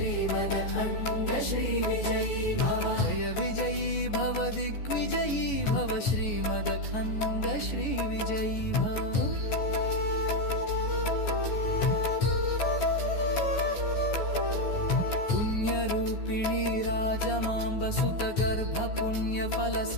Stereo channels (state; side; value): late; right; 14 ms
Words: श्री विजयी भव जय विजयी भव दिग्विजयी भव श्रीमदखण्ड श्री विजयी भव पुण्यरूपिणी राजमाम्ब सुत गर्भ पुण्यफल